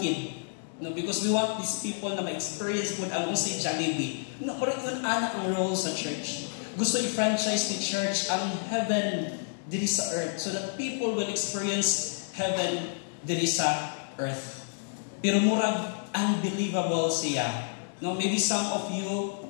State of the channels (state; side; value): silent; right; digital silence